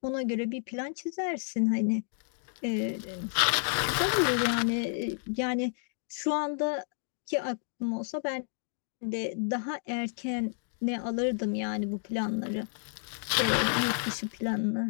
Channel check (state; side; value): silent; right; digital silence